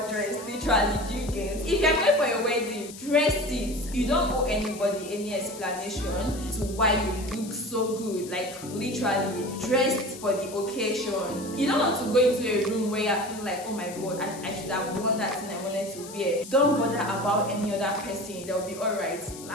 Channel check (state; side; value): noise; left; hiss, 15 dB below the sound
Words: to dress. Literally, do you get? If you're going for your wedding, dress it. You don't owe anybody any explanation to why you look so good. Like literally, dressed for the occasion. You don't want to go into a room where you're feeling like, oh my god, I should have worn that thing I wanted to wear. Don't bother about any other person. They'll be alright.